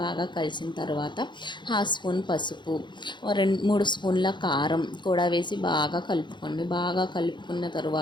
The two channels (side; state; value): right; late; 0.22 ms